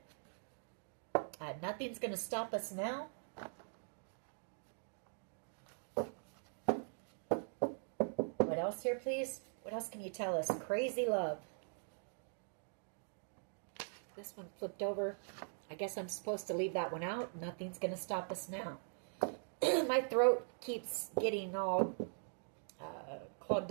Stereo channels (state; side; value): silent; left; digital silence